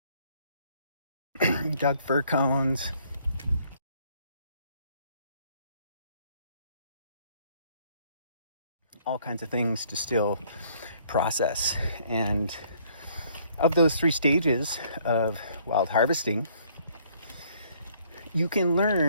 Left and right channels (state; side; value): inverted; both; correlation -0.63